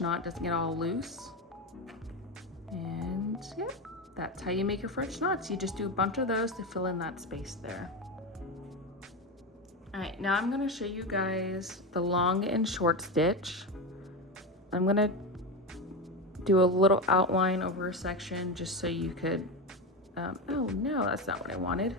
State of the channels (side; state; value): both; normal; correlation 0.17